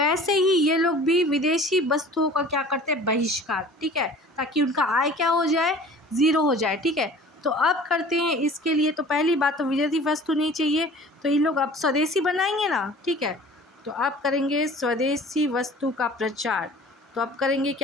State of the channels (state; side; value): normal; both; correlation 0.45